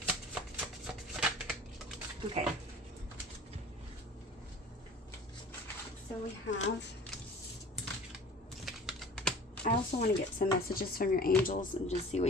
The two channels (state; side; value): normal; both; correlation 0.44